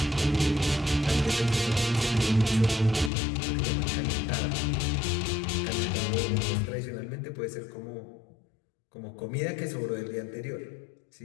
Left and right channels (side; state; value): right; drops out; at 3.1 s